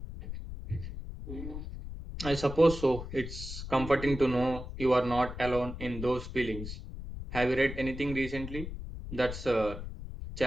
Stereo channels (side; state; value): left; noise; rumble, 9 dB below the sound